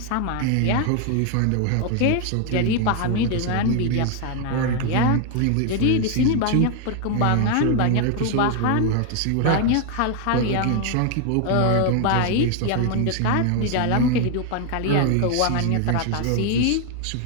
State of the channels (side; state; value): both; different; correlation 0.00